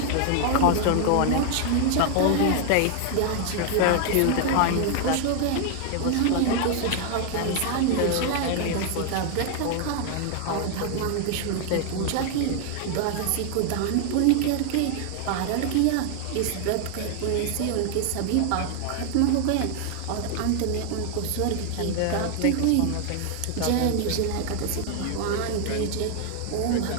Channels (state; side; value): different; both; correlation 0.00